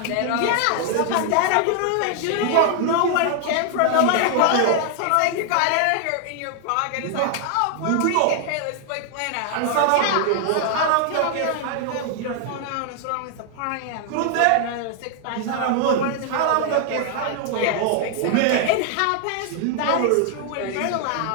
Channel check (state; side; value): different; both; correlation 0.00